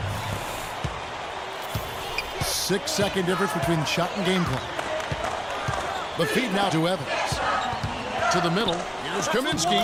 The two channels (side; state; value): both; identical; correlation 1.00